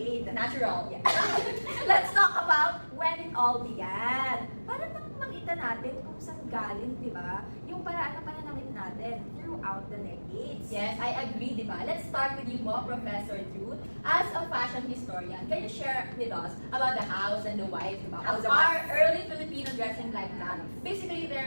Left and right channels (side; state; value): both; inverted; correlation -1.00